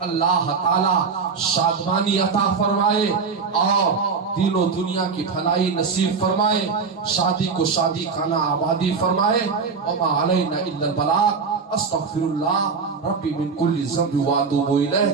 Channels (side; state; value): left; quieter; 5.2 dB